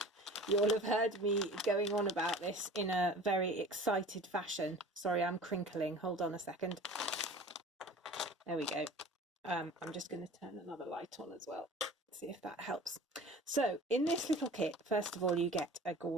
you'll have heard me going on about this in a very excited fashion. Sorry, I'm crinkling. Hold on a second. There we go. I'm just going to turn another light on as well. See if that helps. So in this little kit, first of all, you get a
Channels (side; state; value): both; normal; correlation 0.42